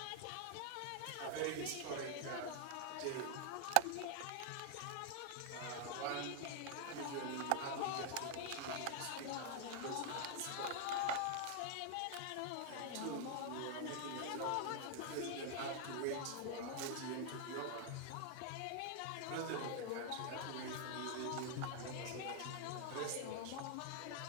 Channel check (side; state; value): both; different; correlation 0.00